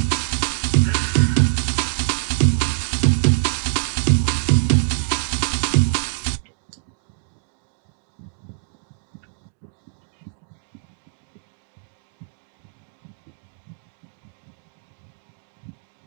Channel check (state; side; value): silent; left; digital silence